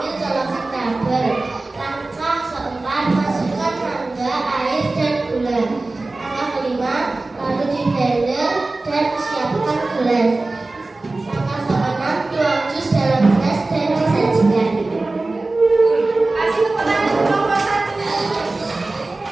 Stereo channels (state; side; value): quieter; left; 3.2 dB